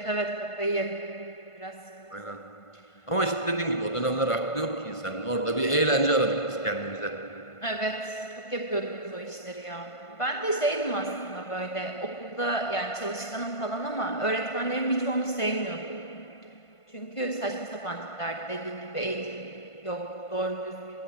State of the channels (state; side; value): late; right; 1.5 ms